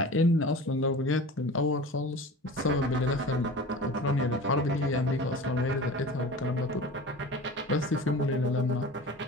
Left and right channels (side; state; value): both; normal; correlation 0.36